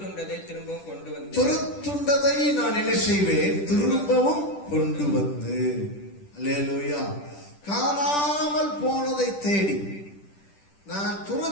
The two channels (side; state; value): right; late; 10 ms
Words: திரும்பவும் கொண்டு வந்து, துரத்துண்டதை நான் என்ன செய்வேன், திரும்பவும் கொண்டு வந்து. அல்லேலூயா. காணாமல் போனதை தேடி நான்